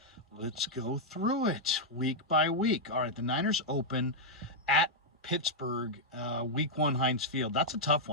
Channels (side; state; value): both; normal; correlation -0.05